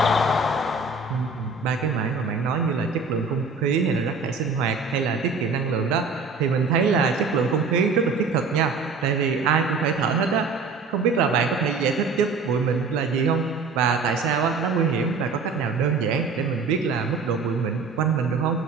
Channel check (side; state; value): left; quieter; 4.3 dB